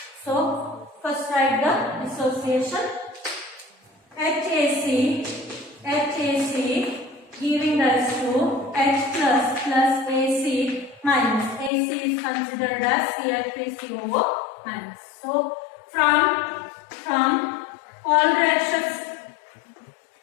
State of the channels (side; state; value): right; drops out; at 11.7 s